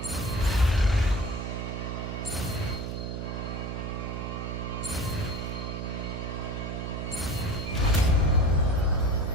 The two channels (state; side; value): noise; right; hum, 4 dB below the sound